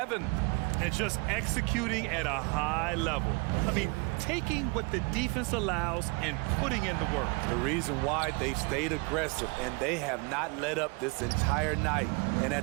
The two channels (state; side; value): quieter; left; 29.8 dB